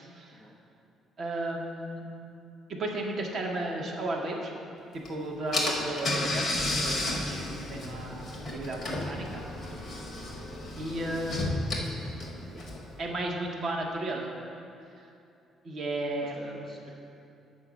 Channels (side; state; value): both; normal; correlation 0.69